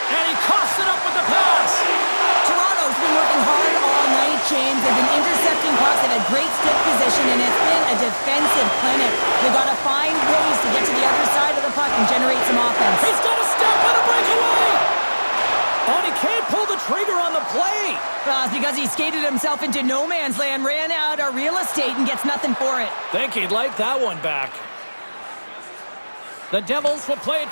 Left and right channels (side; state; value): both; inverted; correlation -1.00